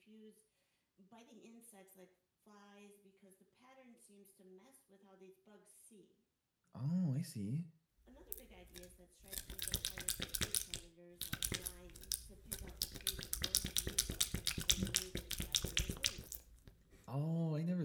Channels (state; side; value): identical; both; correlation 1.00